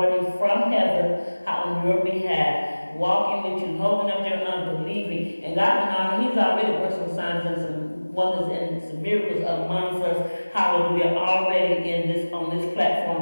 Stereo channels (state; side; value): inverted; both; correlation -1.00